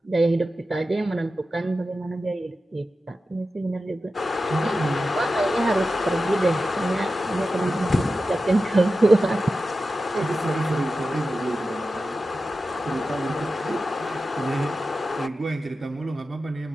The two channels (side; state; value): both; normal; correlation 0.92